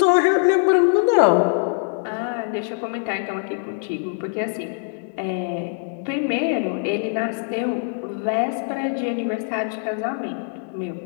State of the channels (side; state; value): right; silent; 64 dB below the other